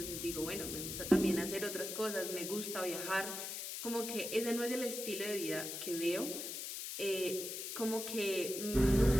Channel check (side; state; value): left; noise; hiss, 5 dB below the sound